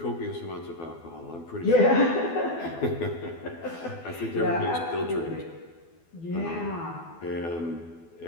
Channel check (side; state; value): right; late; 12 ms